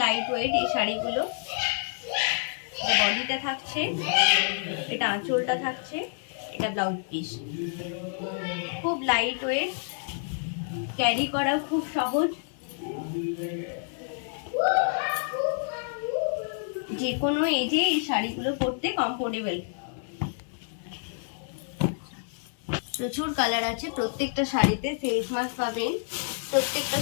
লাইট ওয়েট এই শাড়িগুলো। বডিটা থাকছে, এটা আঁচলটা থাকছে, এটা ব্লাউজ পিস। খুব লাইট ওয়েট, ক্যারি করাও খুব সহজ, যে কোনো এজে এই শাড়িগুলো পরতে কমফোর্টেবল। প্রচুর কালার আছে, প্রত্যেকটা শাড়িতে ফেস মাস্ক পাবেন, প্রত্যেকটা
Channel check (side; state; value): right; silent; digital silence